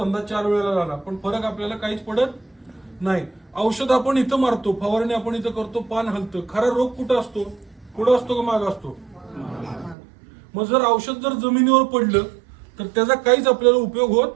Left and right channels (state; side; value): drops out; left; at 10.0 s